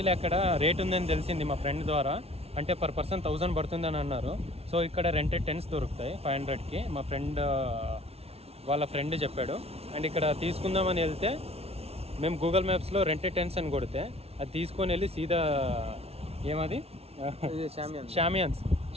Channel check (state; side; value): late; left; 0.30 ms